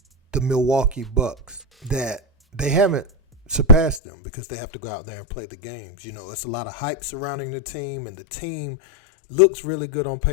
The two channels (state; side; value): drops out; right; at 4.0 s